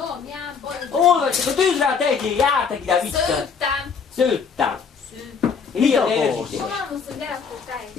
Ján Bolyog? Olvasok, a tűzre tegyél, jártak ide vissza. Szőttem. Szőttem. Szőttem. Ilyen akarsz? érzéke. Mamámhoz, hogy elakott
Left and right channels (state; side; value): quieter; right; 5.9 dB